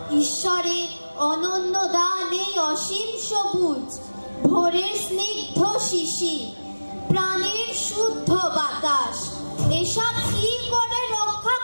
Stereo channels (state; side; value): inverted; both; correlation -1.00